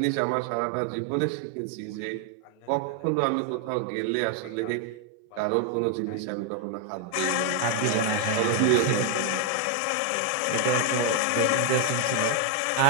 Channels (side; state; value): both; different; correlation 0.00